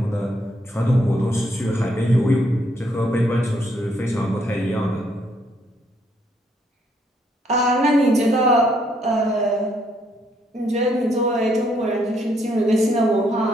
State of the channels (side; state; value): both; normal; correlation 0.71